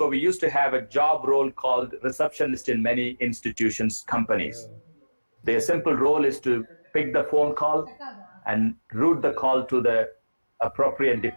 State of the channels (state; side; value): inverted; both; correlation -1.00